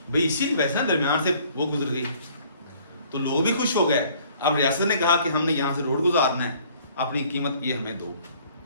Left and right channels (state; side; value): inverted; both; correlation -0.57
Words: भाई, इसी वैसे ना दरमियान से वो गुजर गई तो लोग भी खुश हो गए। अब रियासत ने कहा कि हमने यहाँ से रोड गुजारना है, अपनी कीमत ये हमें दो,